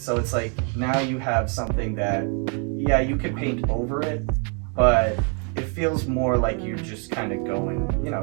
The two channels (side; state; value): left; quieter; 38.6 dB